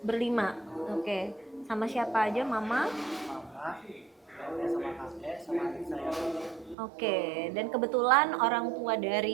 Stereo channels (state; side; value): drops out; left; at 6.8 s